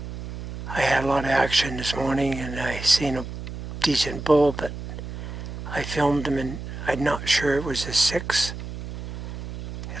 I had a lot of action this morning and I seen a decent bull, but I filmed him and I'm not sure it was a 6.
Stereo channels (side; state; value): right; noise; hum, 8 dB below the sound